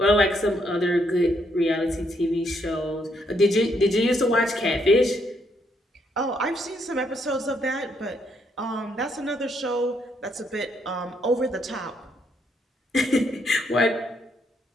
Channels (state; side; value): normal; both; correlation 0.74